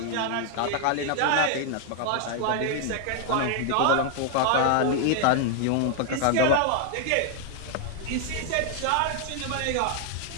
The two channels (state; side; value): different; both; correlation 0.00